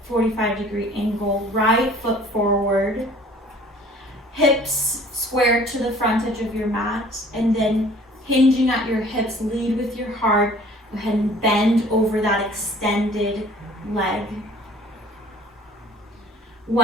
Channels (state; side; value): normal; both; correlation 0.51